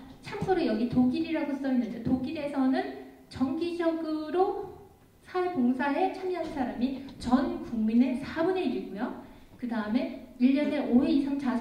참고로 여기 독일이라고 써있는데 독일에서는 정기적으로 사회봉사에 참여한 사람이 전 국민의 4분의 1이고요. 그 다음에 1년에 5회 이상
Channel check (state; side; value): identical; both; correlation 1.00